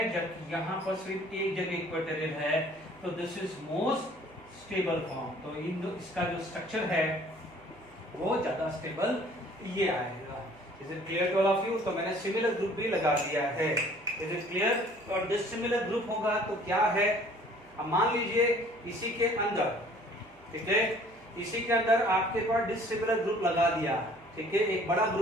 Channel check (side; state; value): right; noise; hum, 27 dB below the sound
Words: जबकि यहाँ पर सिर्फ 1 जगह इक्वेटोरियल है, तो this is most stable form. तो इसका जो स्ट्रक्चर है वो ज्यादा स्टेबल ये आएगा। Is it clear to all of you? तो मैंने सिमिलर ग्रुप भी लगा दिया है। Is it clear? और डिसिमिलर ग्रुप होगा तो क्या है, अब मान लीजिए इसी के अंदर, ठीक है, इसी के अंदर आपके पास डिसिमिलर ग्रुप लगा दिया, ठीक है, एक बड़ा